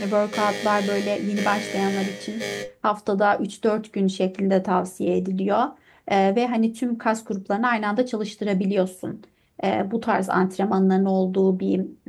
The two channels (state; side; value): identical; both; correlation 1.00